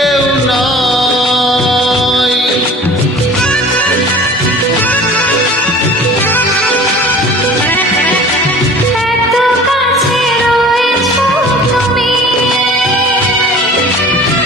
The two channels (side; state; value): both; normal; correlation 0.44